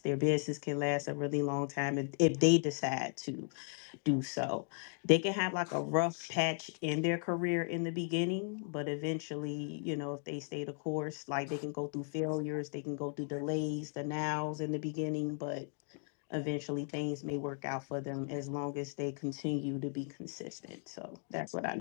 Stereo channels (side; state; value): right; silent; 54 dB below the other